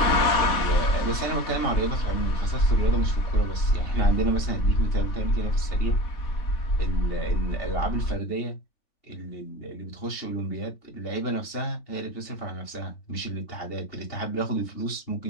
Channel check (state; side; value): late; right; 3.5 ms